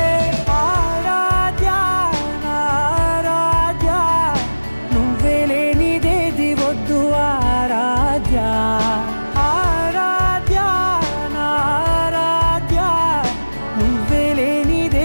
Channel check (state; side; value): inverted; both; correlation -1.00